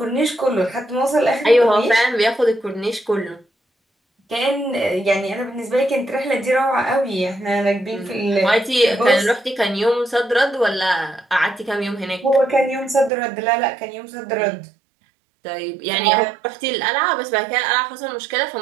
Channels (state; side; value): drops out; left; at 13.1 s